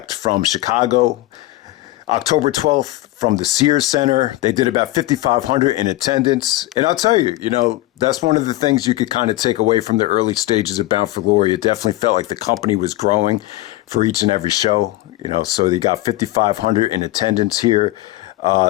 from Chicago, October 12th from the Sears Center. They did about 5,500 in attendance. And I'll tell you, that's one of the things you could kind of take away from the early stages of Bound for Glory. It definitely felt like the company was growing for each and every show, so they got 5,500 in attendance here.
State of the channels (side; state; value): right; quieter; 17.4 dB